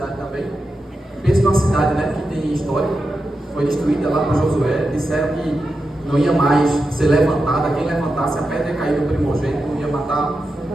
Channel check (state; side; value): normal; both; correlation 0.89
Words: também. Pensa numa cidade, né, que tem história, foi destruída lá por Josué, disseram que não ia mais ser levantada, quem levantasse a pedra ia cair no primogênito, não ia matar,